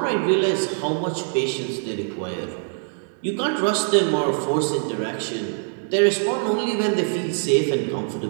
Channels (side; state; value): left; silent; digital silence